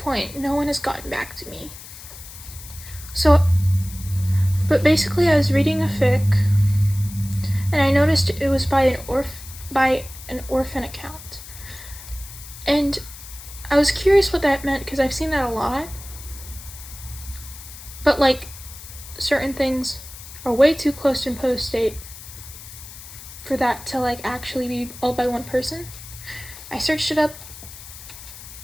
no one has gotten back to me. But basically I was reading a fic, and I noticed it was by an orphan account. And I was curious what that meant because I've seen that a lot. But certain things are way too close to post date for that to actually be all by one person. I searched it up.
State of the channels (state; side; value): noise; left; hiss, 15 dB below the sound